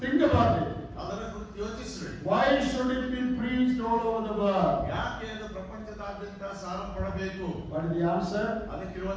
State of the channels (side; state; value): both; identical; correlation 1.00